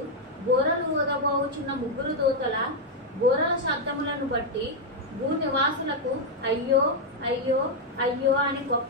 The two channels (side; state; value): both; normal; correlation 0.00